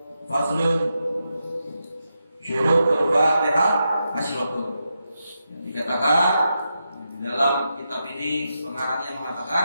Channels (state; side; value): inverted; both; correlation -0.86